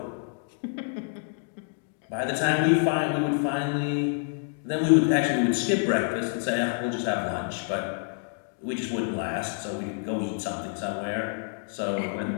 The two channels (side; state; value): right; silent; 57 dB below the other